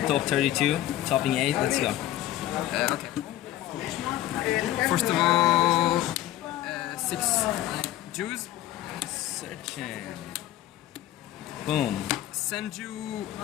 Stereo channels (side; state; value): right; quieter; 13.7 dB